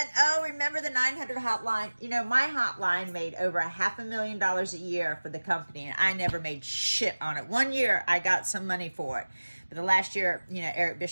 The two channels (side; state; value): both; inverted; correlation -1.00